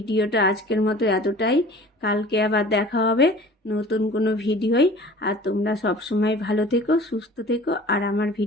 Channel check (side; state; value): both; normal; correlation 0.44